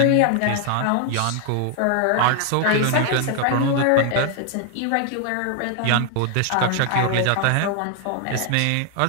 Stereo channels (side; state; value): both; different; correlation 0.00